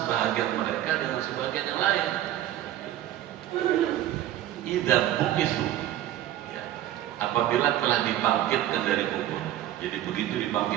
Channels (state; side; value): quieter; left; 12.9 dB